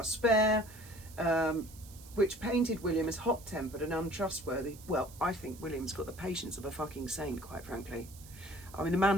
spare, which painted William as hot-tempered and untrustworthy. Well, I think William's got the patience of a fucking saint, quite frankly. I mean, the man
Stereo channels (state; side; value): noise; right; hiss, 20 dB below the sound